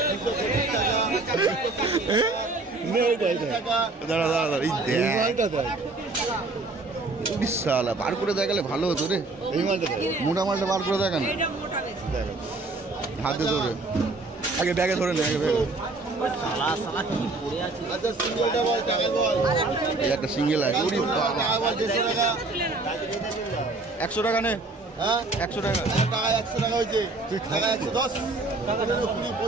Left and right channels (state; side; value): quieter; left; 3.3 dB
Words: 220 টাকা, 220 টাকা। দাঁড়া দাঁড়া দাঁড়া, এই দেখ বিশাল বার করে দেখালে ভালো হতো রে। এই মালটা দেখ। মোটা মালটা বার করে দেখা না, হাতে ধরে আগে ব্যাগে ধরে নে, আগে ব্যাগে। আচ্ছা সিঙ্গেলটা বল, টাকা বল। এই একটা সিঙ্গেল আছে। ওরে বাবা, টাকা বল, 150 টাকা। 100 টাকা নে। হ্যাঁ 100 টাকা। টাকা 100 টাকা হয়েছে। টাকা 110, 15, 20,